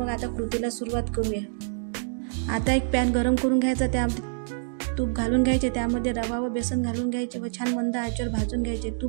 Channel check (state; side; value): silent; left; digital silence